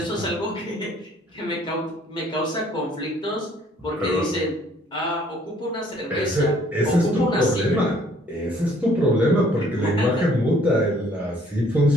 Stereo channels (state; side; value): normal; both; correlation 0.60